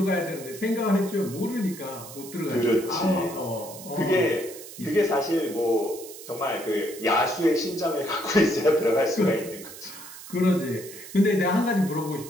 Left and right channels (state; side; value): noise; right; hiss, 15 dB below the sound